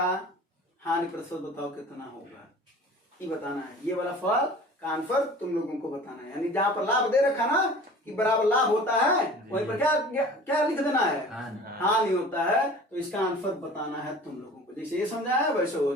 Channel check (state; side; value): normal; both; correlation 0.43